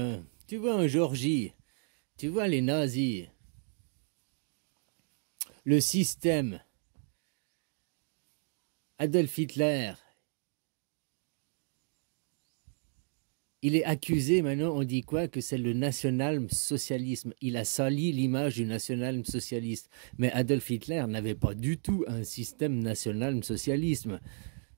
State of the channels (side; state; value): left; silent; 56 dB below the other